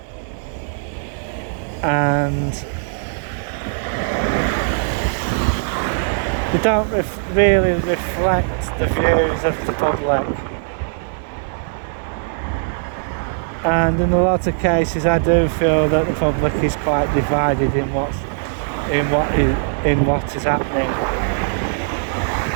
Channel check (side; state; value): left; silent; digital silence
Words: and they don't really reflect the views of the public. And in a lot of cases I do feel that the public is quite divided in what is happening.